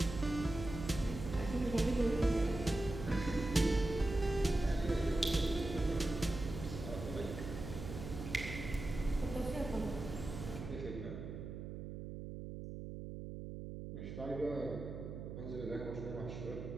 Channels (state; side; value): noise; right; hum, 8 dB below the sound